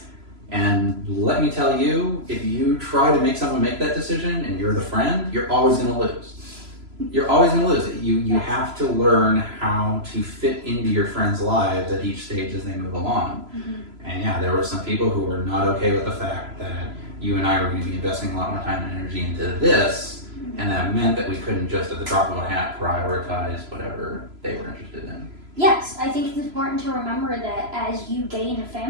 And let me tell you, if you try to make someone make that decision and you're the friend, you're always going to lose. You're always going to lose it. You have to learn how to fit into your friends' lives at each stage as they move along. And yeah, there were some people who were not okay with the fact that you and I were going to be investing a lot more time and energy into this, and that meant that we couldn't just at the drop of a hat prioritize whatever they were interested in. Yes, I think it's important to remember that as you gain a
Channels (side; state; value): left; late; 3.0 ms